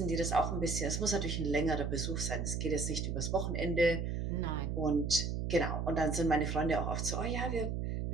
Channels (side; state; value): right; noise; hum, 1 dB below the sound